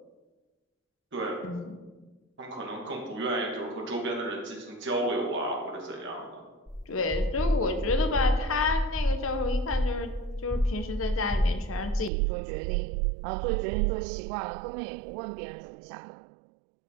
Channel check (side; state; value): left; drops out; at 12.1 s